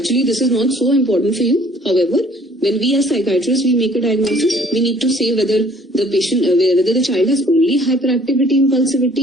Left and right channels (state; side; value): normal; both; correlation 0.57